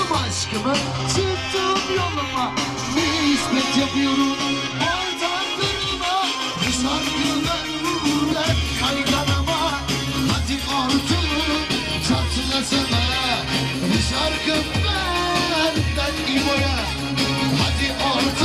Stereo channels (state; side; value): identical; both; correlation 1.00